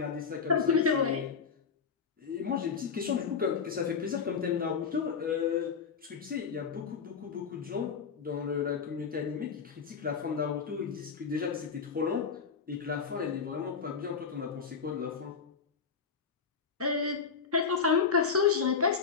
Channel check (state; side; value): quieter; right; 6.0 dB